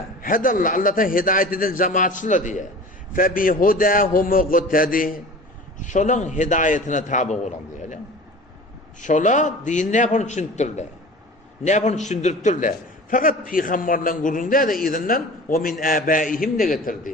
Hadallah Allah'tan hidayet eden cemaatçılar diye. Fe bi hudahum muqtadi. Şolun hidayetine tabi olan diye. Şola din ne yapın düşündürler. Ne yapın düşündürtürler. Fakat peygamberlerin gurrunda da izinden ve min abaihim de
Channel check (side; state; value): both; normal; correlation 0.40